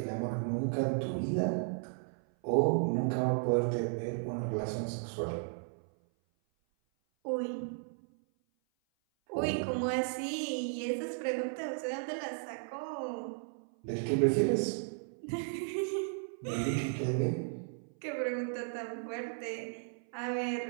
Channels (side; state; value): left; silent; 55 dB below the other